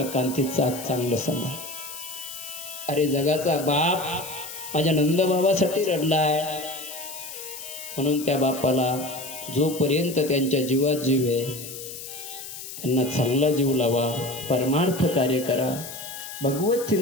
आणि ते चाक चांगलं सांभाळ. अरे जगाचा बाप माझ्या नंदबाबासाठी रडलाय, म्हणून त्या बापाला जोपर्यंत त्यांच्या जीवात जीव आहे त्यांना चांगला जीव लावा, परमार्थ कार्य करा, भगवत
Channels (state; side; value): noise; left; hiss, 11 dB below the sound